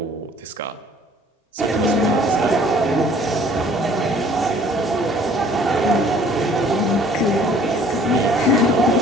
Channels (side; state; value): both; normal; correlation 0.56